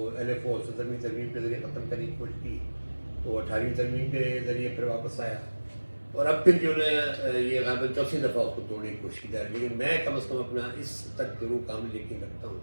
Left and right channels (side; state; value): both; inverted; correlation -1.00